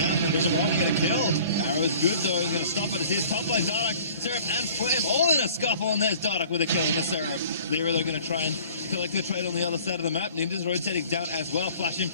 There's a run to get a kill. Arrow's good though. He's going to stop it. It's his top lane. Dardoch, Seraph, and Flame all in a scuffle. And there's Dardoch with a kill in the Seraph. Lyra, they're going to try and collect the trade on the other side of the map. Ninja's rotating down as well. Flashing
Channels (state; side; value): inverted; both; correlation -0.49